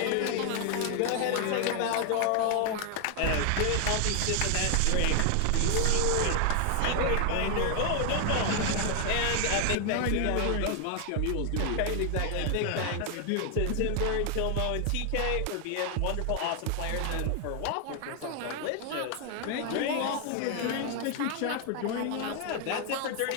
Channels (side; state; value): both; different; correlation 0.00